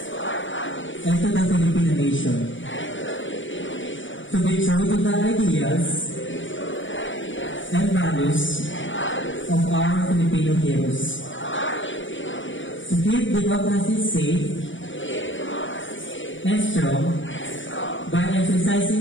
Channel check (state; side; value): late; right; 0.56 ms